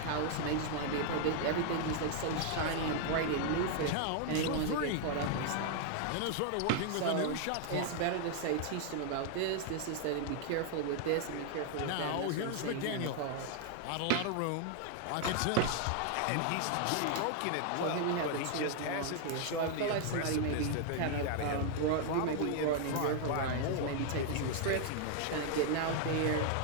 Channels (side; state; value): both; different; correlation 0.00